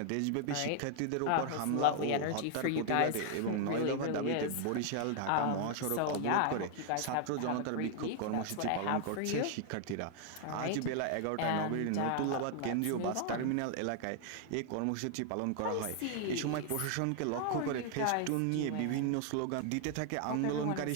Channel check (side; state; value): both; different; correlation 0.00